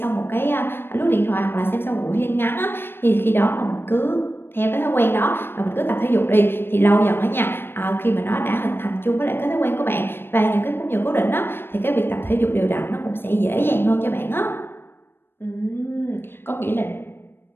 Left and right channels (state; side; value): late; right; 0.10 ms